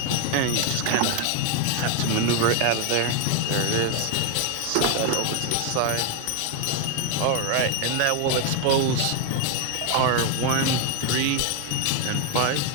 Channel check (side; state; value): both; different; correlation 0.01